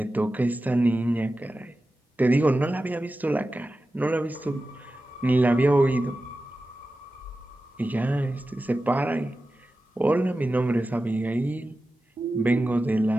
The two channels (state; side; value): normal; both; correlation 0.94